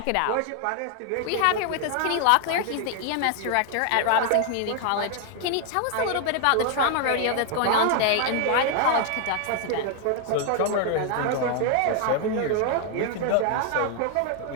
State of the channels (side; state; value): both; different; correlation 0.00